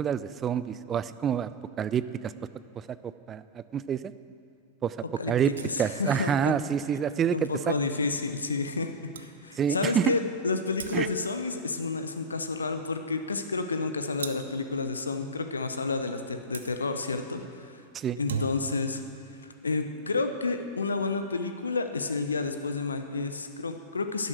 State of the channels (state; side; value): normal; both; correlation -0.14